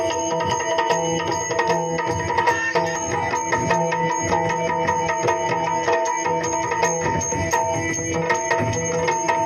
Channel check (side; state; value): both; identical; correlation 1.00